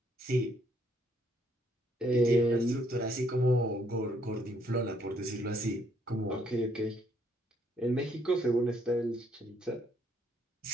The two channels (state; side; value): normal; both; correlation 0.69